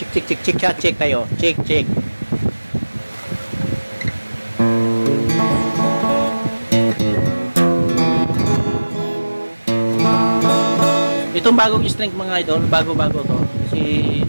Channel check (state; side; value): inverted; both; correlation -1.00